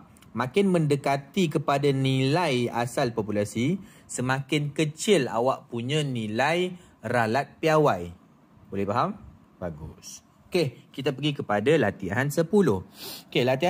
Makin mendekati kepada nilai asal populasi, semakin kecil awak punya nilai ralat piawai. Boleh faham? Bagus. Okey, kita pergi kepada latihan 10. Okey,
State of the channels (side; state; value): both; identical; correlation 1.00